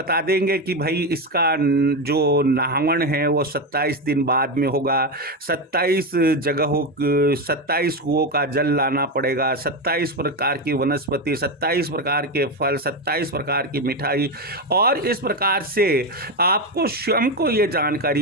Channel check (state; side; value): normal; both; correlation 0.13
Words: देंगे कि भाई इसका जो नाहवण है वो 27 दिन बाद में होगा, 27 जगहों 27 कुओं का जल लाना पड़ेगा, 27 प्रकार की वनस्पति, 27 प्रकार के फल, 27 प्रकार की मिठाई, और इस प्रकार से आपको स्वयं को ये